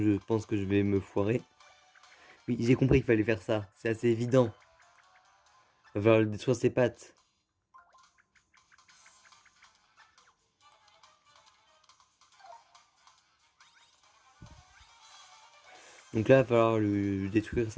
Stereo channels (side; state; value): both; identical; correlation 1.00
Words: je pense que je vais me foirer. Oui, j'ai compris qu'il fallait faire ça. C'est assez évident. Il va falloir le détruire ses pattes. Donc là, il va falloir lui détruire